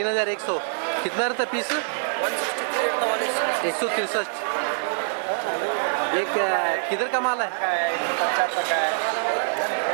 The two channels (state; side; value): silent; left; digital silence